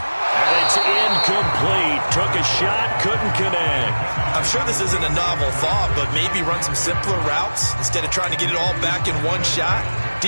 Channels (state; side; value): inverted; both; correlation -1.00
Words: And it's incomplete. Took a shot, couldn't connect. I'm sure this isn't a novel thought, but maybe run some simpler routes instead of trying to get it all back in one shot.